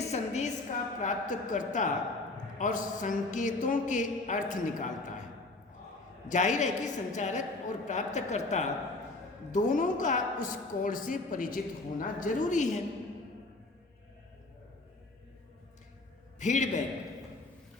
संदेश का प्राप्तकर्ता और संकेतों के अर्थ निकालता है। जाहिर है कि संचारक और प्राप्तकर्ता दोनों का उस कोड से परिचित होना जरूरी है।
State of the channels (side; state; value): right; quieter; 3.1 dB